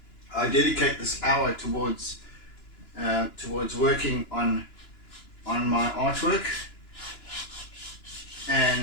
dedicate this hour towards working on my artwork,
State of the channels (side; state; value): right; late; 2.9 ms